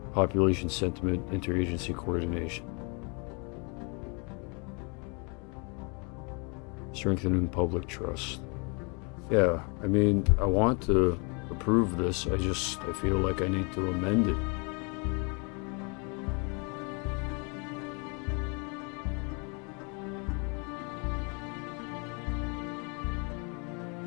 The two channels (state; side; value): quieter; right; 33.4 dB